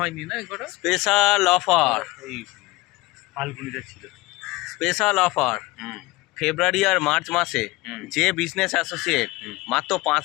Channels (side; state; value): right; quieter; 21.3 dB